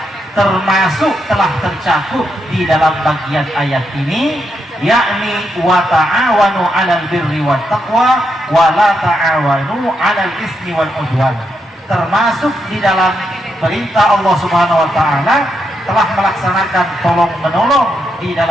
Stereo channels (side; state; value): both; normal; correlation 0.82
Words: termasuk telah tercakup di dalam bagian ayat ini, yakni wa ta'awanu 'alal birri wat taqwa wa la ta'awanu 'alal ismi wal 'udwan. Termasuk di dalam perintah Allah Subhanahu wa Ta'ala telah melaksanakan tolong menolong di